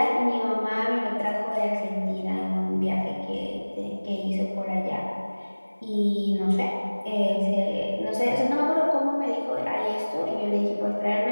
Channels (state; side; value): inverted; both; correlation -1.00